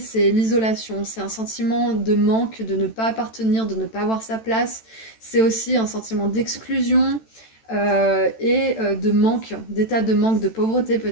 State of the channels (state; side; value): late; right; 13 ms